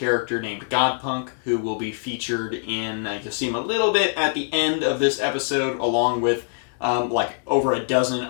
named Godpunk who will be featured in, you'll see him a little bit at the end of this episode, along with like over a dozen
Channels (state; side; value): silent; right; 63 dB below the other